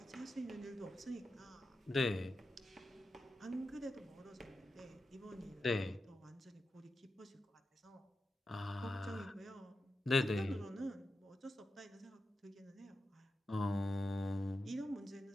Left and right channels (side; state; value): both; normal; correlation 0.90